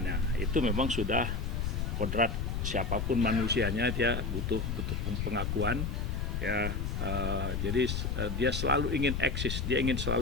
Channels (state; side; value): noise; left; rumble, 1 dB below the sound